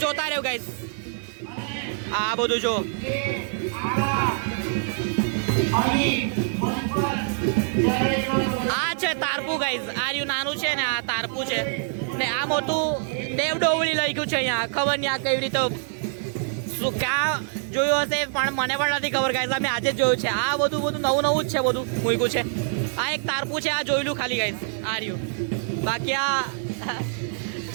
જોતા રહ્યો ગાઈઝ. આ બધું જો આ છે તારપું ગાઈઝ આ રહ્યું નાનું છે ને આ તારપું છે ને આ મોટું દેવ ડોવળી લખ્યું છે અહીંયા ખબર નહીં આ કેવી રીતે શું ક્યાં જોયું હશે પણ મને પણ નથી ખબર ગાઈઝ અમે આજે જ જોયું છે. આ બધું નવું નવું જ છે બધું મૂક્યું છે. આ એક તારપું છે આ જોયેલું ખાલી ગાઈઝ આ રહ્યું. બાકી આ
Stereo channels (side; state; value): left; silent; digital silence